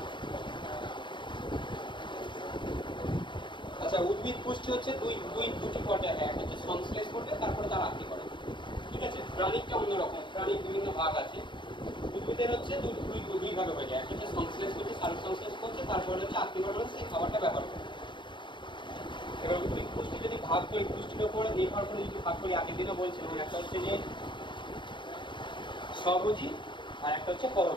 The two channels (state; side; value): late; right; 0.23 ms